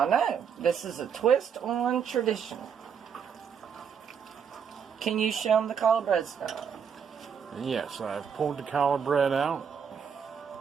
know. This is a twist on tradition. Can you show them the challah bread stuff? Yes, I've pulled the challah bread out.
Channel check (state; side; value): quieter; left; 7.2 dB